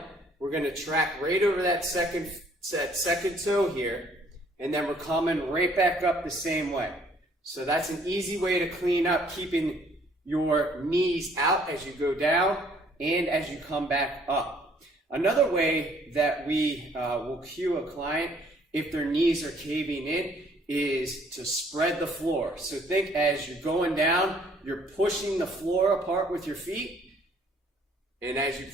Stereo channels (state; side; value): normal; both; correlation 0.61